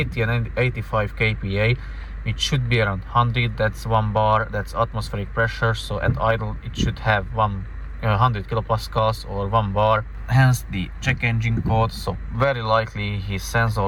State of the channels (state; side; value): identical; both; correlation 1.00